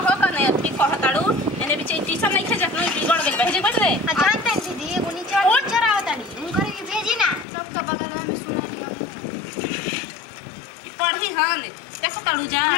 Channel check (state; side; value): drops out; right; at 7.5 s